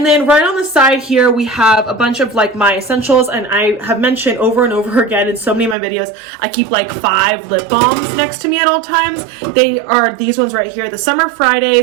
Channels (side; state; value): left; drops out; at 5.8 s